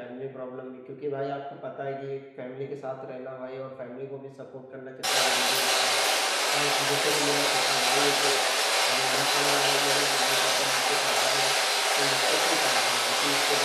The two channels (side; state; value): both; identical; correlation 1.00